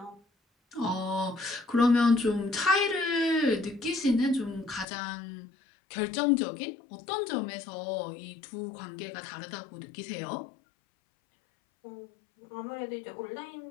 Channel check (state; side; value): drops out; right; at 4.9 s